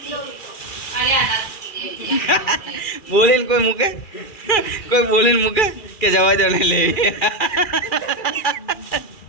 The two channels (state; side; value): late; right; 2.4 ms